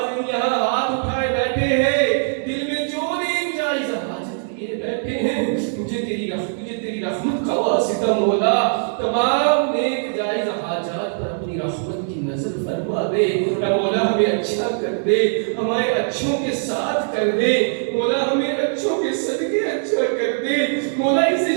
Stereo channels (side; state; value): left; silent; 65 dB below the other